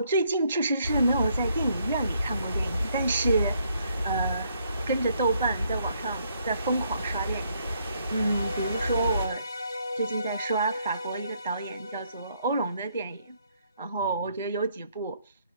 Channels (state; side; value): inverted; both; correlation -0.71